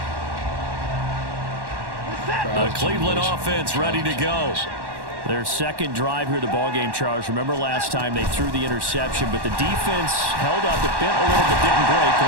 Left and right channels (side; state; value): left; late; 1.1 ms